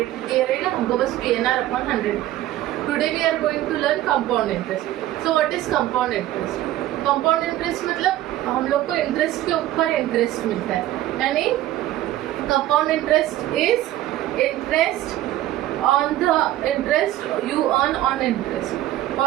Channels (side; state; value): left; quieter; 14.3 dB